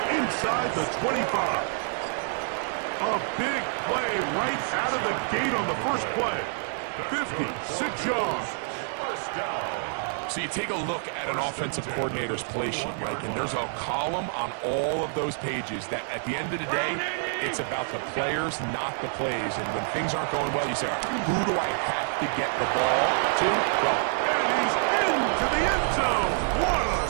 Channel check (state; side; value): silent; left; 60 dB below the other